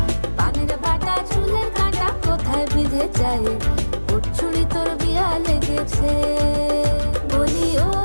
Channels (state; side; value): inverted; both; correlation -1.00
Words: পানের বাটা চুলের কাঁটা কোথায় বিঁধে যায়, চুড়ি তোর বিয়া লেগেছে। বলি ও